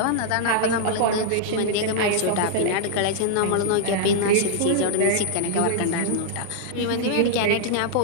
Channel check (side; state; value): both; different; correlation -0.01